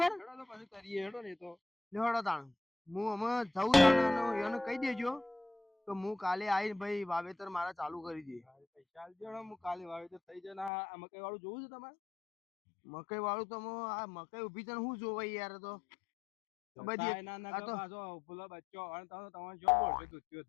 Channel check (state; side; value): drops out; right; at 10.7 s